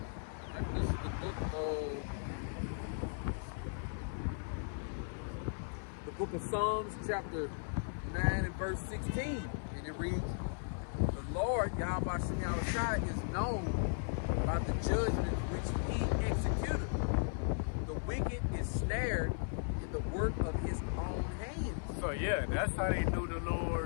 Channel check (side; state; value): right; silent; 53 dB below the other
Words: This is the book of Psalms, chapter 9 and verse 16. And it reads, the Lord, Yahweh Shem Yahushua, is known by the judgment which he executed. The wicked is snared in the work of his own hands. So yeah, that's how they knew the